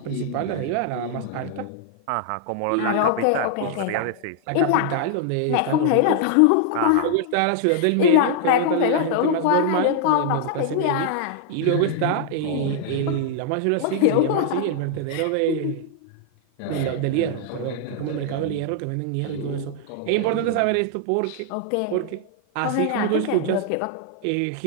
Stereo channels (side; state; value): both; different; correlation -0.01